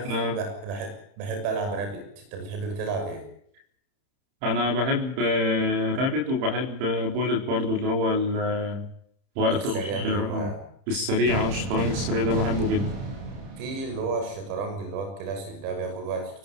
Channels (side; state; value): left; late; 30 ms